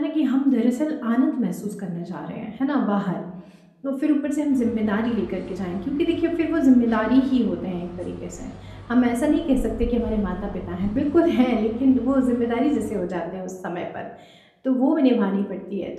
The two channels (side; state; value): both; identical; correlation 1.00